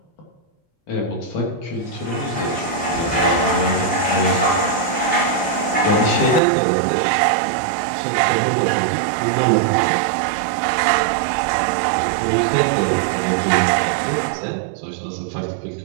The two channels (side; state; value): left; drops out; at 6.4 s